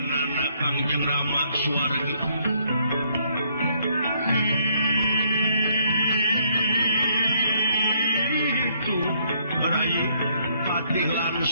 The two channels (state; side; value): inverted; both; correlation -0.69